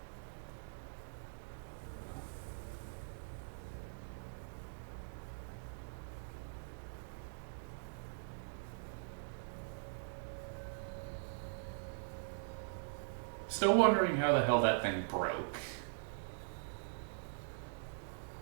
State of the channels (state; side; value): silent; left; digital silence